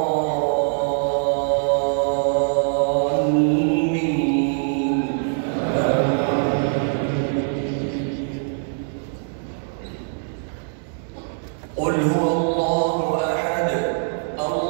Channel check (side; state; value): left; silent; digital silence